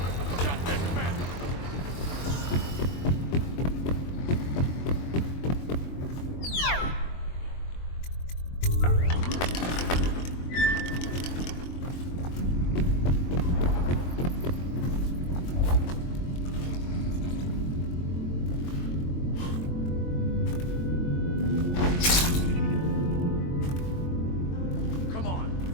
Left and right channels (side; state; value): right; late; 23 ms